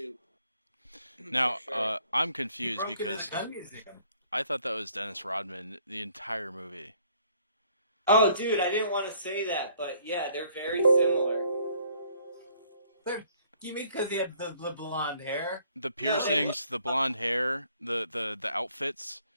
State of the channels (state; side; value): inverted; both; correlation -0.62